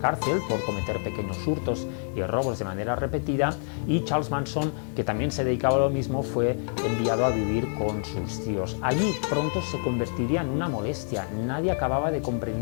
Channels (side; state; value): right; silent; 60 dB below the other